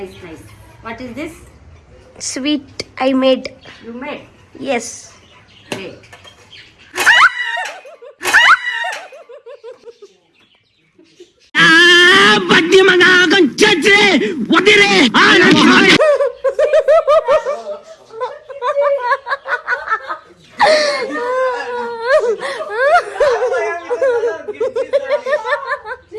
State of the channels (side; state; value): both; identical; correlation 1.00